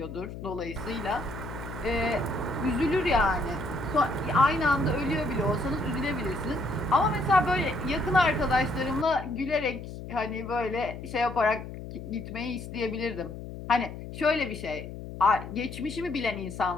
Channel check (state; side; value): noise; left; hum, 10 dB below the sound